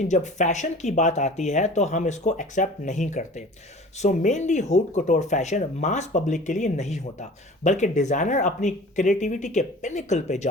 जब फैशन की बात आती है तो हम इसको एक्सेप्ट नहीं करते। सो मेनली हूट कटोर फैशन मास पब्लिक के लिए नहीं होता, बल्कि डिज़ाइनर अपनी क्रिएटिविटी के पिनिकल पे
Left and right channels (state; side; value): normal; both; correlation 0.43